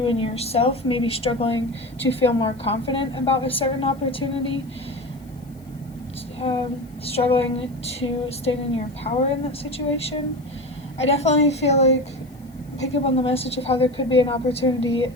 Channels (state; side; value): noise; left; hiss, 29 dB below the sound